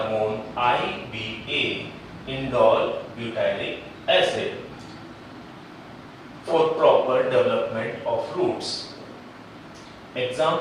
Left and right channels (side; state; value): both; identical; correlation 1.00